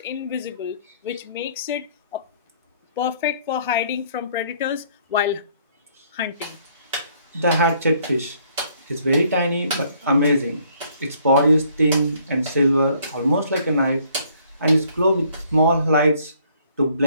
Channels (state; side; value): inverted; both; correlation -0.64